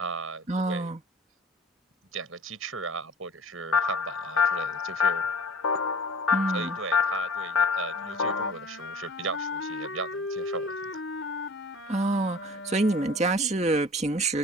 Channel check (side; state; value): both; normal; correlation 0.46